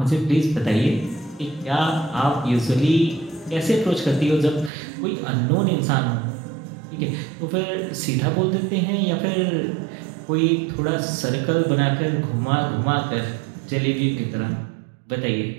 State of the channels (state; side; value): drops out; left; at 4.7 s